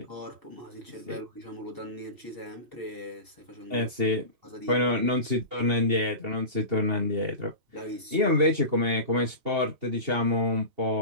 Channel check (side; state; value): left; late; 2.8 ms